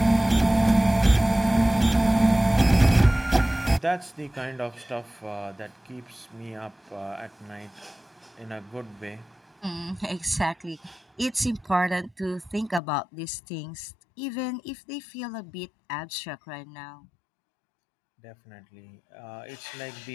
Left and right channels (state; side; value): drops out; right; at 12.8 s